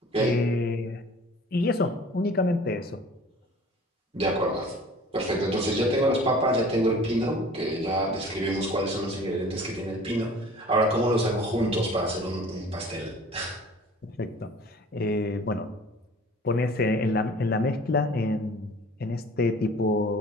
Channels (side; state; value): both; normal; correlation 0.46